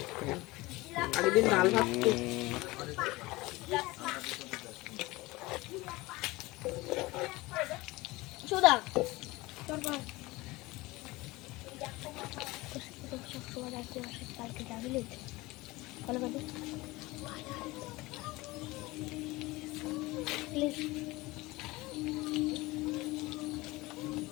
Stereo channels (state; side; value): quieter; right; 21.1 dB